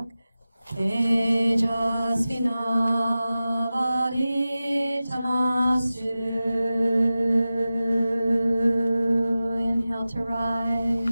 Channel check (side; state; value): both; inverted; correlation -0.95